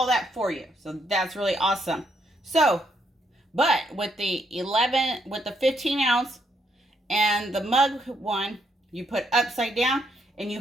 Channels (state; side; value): normal; both; correlation 0.75